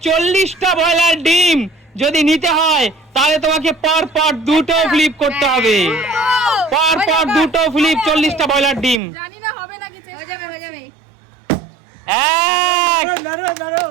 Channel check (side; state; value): left; drops out; at 9.0 s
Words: 40টা ব্রয়লার ডিম যদি নিতে হয় তাহলে তোমাকে পর পর দুটো ফ্লিপ করতে হবে, পর পর দুটো ফ্লিপ 40টা ব্রয়লার ডিম। জানি না হবে নাকি, হয়ে যাবে হয়ে যাবে। এক দারুণ